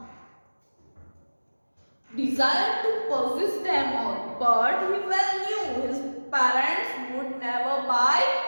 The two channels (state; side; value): inverted; both; correlation -1.00